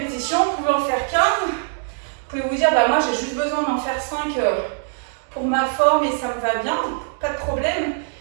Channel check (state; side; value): silent; left; digital silence